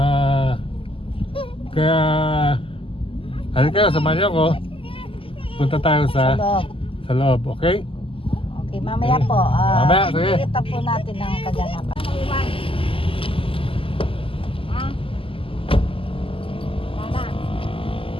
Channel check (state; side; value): late; right; 0.26 ms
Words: Kaya halika, samahan niyo ako. Punta tayo Sa loob. sa loob, okay? Okay, mamaya po. Mamaya, sige. Kita po natin ang kaganapan.